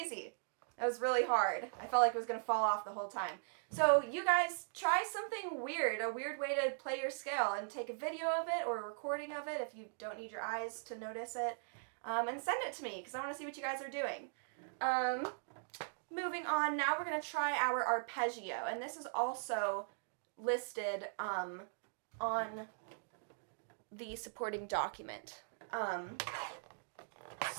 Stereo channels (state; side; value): silent; left; digital silence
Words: That was really hard. I felt like it was going to fall off the whole time. So you guys try something weird, a weird way to play your scale, and take a video of it or a recording of it if you don't need your eyes to notice it, and send it to me because I want to see what you guys are doing. Moving on, now we're going to try our arpeggio, and this is also listed on the supporting document.